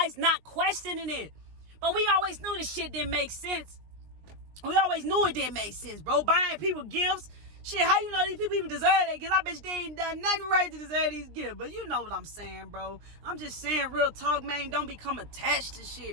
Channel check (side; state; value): left; late; 20 ms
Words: not questioning it. But we always knew this shit didn't make sense. We always knew it didn't make sense, bro. Buying people gifts. Shit, how you know these people even deserve that? Because I bet you they ain't done nothing right to deserve these gifts. But you know what I'm saying, bro. I'm just saying, real talk, man. Don't become attached to